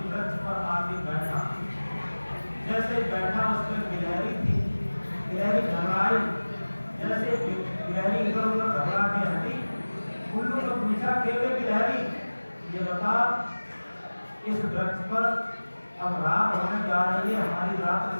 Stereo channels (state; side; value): inverted; both; correlation -1.00